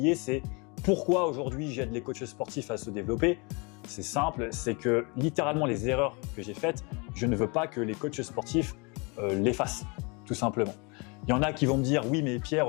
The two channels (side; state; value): right; quieter; 30.4 dB